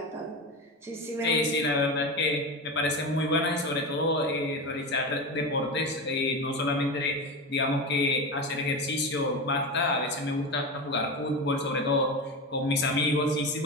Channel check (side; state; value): both; normal; correlation 0.21